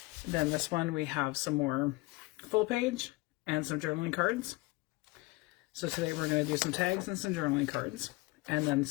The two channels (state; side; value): quieter; right; 23.0 dB